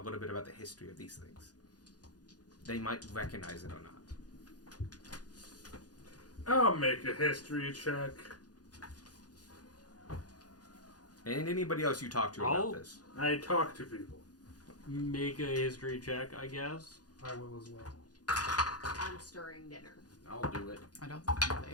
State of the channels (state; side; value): late; right; 0.69 ms